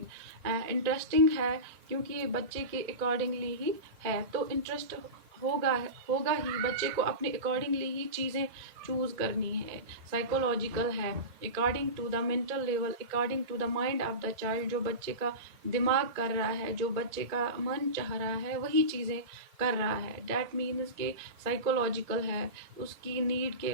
Interesting है क्योंकि ये बच्चे के accordingly ही है, तो interest होगा होगा ही, बच्चे को अपने अकॉर्डिंगली ही चीज़ें चूज करनी है. साइकोलॉजिकल है, according to the mental level, according to the mind of the child. जो बच्चे का दिमाग कर रहा है, जो बच्चे का मन चाह रहा है, वही चीज़ें कर रहा है. डैट मीन्स के साइकोलॉजिकल है, उसकी नीड के,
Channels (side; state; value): left; late; 1.8 ms